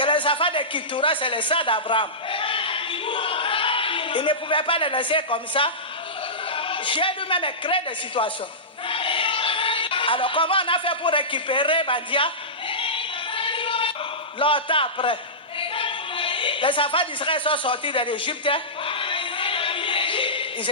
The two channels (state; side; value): normal; both; correlation -0.17